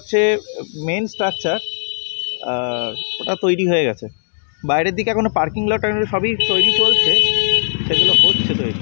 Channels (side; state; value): right; silent; 68 dB below the other